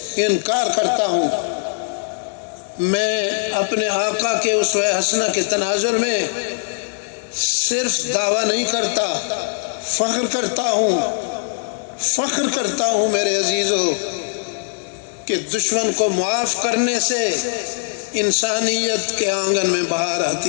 انکار کرتا ہوں۔ میں اپنے آقا کے اسوہ حسنہ کے تناظر میں صرف دعویٰ نہیں کرتا، فخر کرتا ہوں میرے عزیزو کہ دشمن کو معاف کرنے سے انسانیت کے آنگن میں بہار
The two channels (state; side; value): silent; right; digital silence